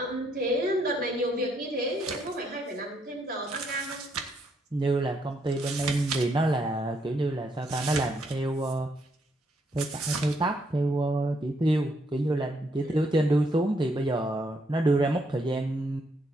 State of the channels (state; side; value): normal; both; correlation 0.74